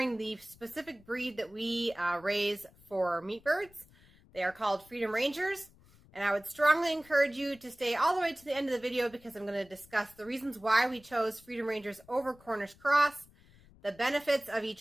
the specific breed that we raise for meat birds. They are called Freedom Rangers, and I would strongly encourage you to stay all the way to the end of the video because I'm going to discuss the reasons why we chose Freedom Rangers over Cornish Cross, the benefits of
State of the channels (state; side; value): noise; left; rumble, 26 dB below the sound